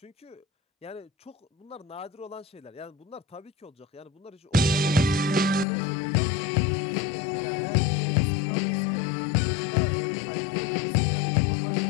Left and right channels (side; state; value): right; drops out; at 5.7 s